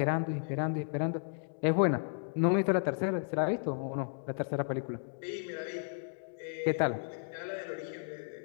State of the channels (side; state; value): right; silent; digital silence